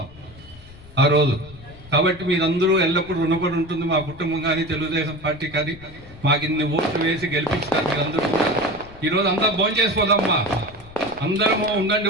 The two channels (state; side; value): noise; left; rumble, 20 dB below the sound